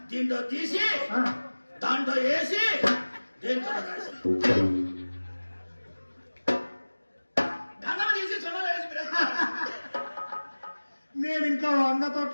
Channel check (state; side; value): inverted; both; correlation -1.00